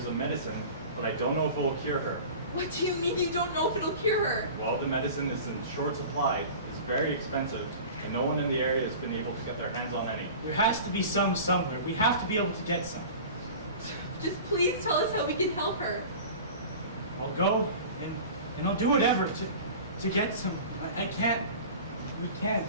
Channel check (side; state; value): both; inverted; correlation -0.37